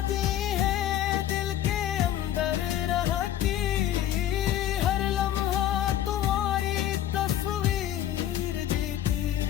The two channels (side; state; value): right; quieter; 11.7 dB